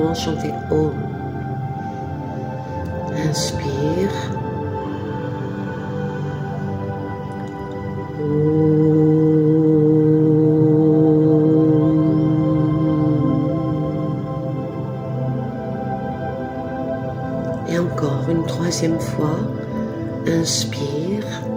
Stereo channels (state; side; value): identical; both; correlation 1.00